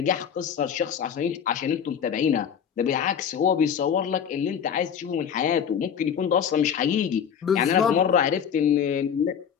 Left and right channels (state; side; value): quieter; right; 7.9 dB